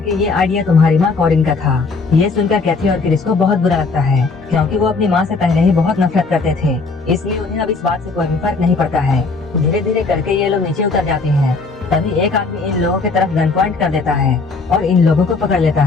ये आइडिया तुम्हारी माँ कॉरिन का था। ये सुनकर कैथी और क्रिस को बहुत बुरा लगता है, क्योंकि वो अपनी माँ से पहले ही बहुत नफरत करते थे, इसलिए उन्हें अब इस बात से कोई भी फर्क नहीं पड़ता है। धीरे धीरे करके ये लोग नीचे उतर जाते हैं। तभी एक आदमी इन लोगों की तरफ गन पॉइंट कर देता है और इन लोगों को पकड़ लेता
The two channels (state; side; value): quieter; right; 4.1 dB